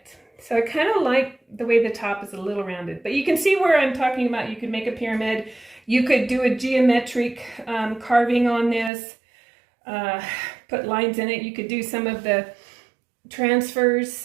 So I kind of like the way the top is a little rounded, but you can see where I'm talking about. You could make a pyramid. You could do a geometric carving on this, put lines in it. You could do some of the transfers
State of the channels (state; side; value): drops out; left; at 8.9 s